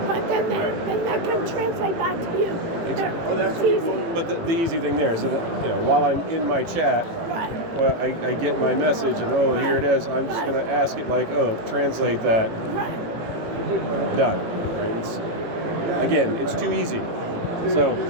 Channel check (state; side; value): late; left; 18 ms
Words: But then that can translate back to you. That's easy. But the easy thing there is that, while I'm in my chat, well, I get my message and, here it is. I'm just going to ask it like, translate that. Done. Right? It's too easy. So